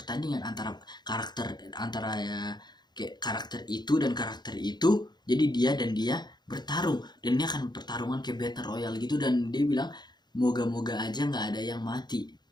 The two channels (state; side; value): late; right; 0.21 ms